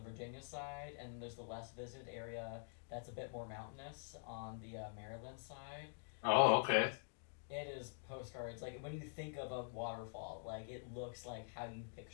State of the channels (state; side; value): silent; right; digital silence